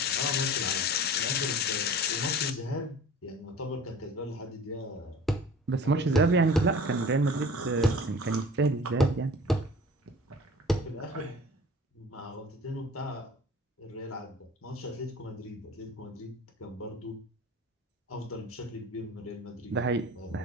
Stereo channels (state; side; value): normal; both; correlation 0.42